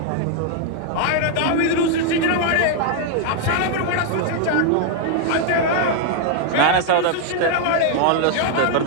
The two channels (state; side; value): different; both; correlation 0.00